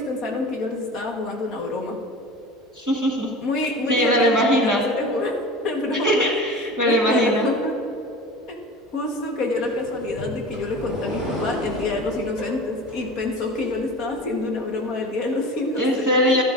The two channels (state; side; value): normal; both; correlation 0.35